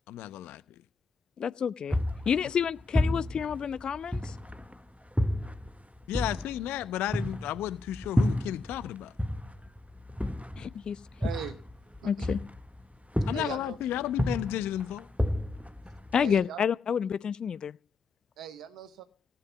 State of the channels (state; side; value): quieter; right; 3.9 dB